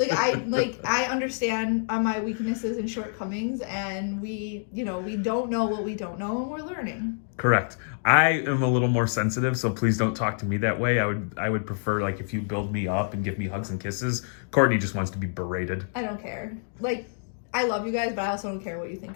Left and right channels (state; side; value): silent; right; digital silence